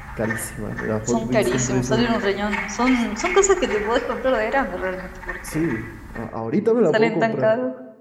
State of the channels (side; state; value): both; identical; correlation 1.00